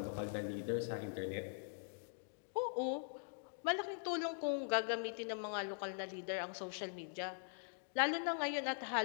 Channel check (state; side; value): silent; right; digital silence